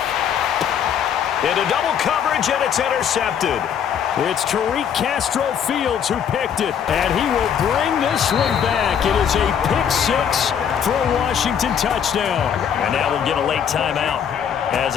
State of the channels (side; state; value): right; quieter; 8.3 dB